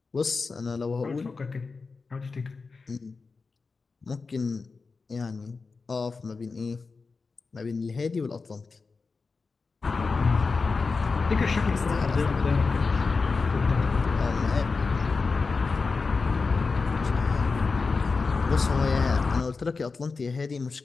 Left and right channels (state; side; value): quieter; right; 4.4 dB